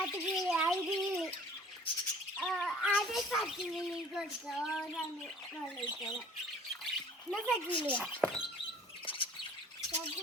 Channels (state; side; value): normal; both; correlation 0.50